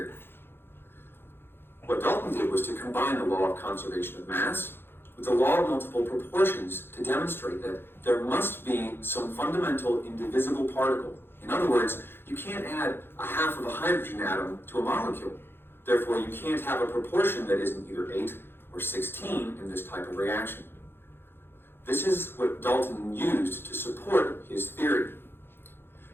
What Dalton did was to combine the law of conservation of mass with the law of multiple proportions to demonstrate that there must be some fundamental indivisible particle. In other words, you can't add a half of a hydrogen atom to a molecule. Therefore, you can't have a proportion that isn't either 8 or 16 in this type of reaction. This is what Dalton used to support his theory.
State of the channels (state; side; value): late; right; 0.11 ms